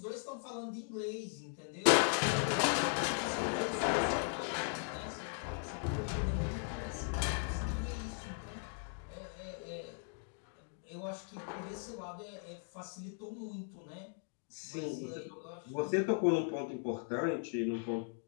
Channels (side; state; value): right; silent; 52 dB below the other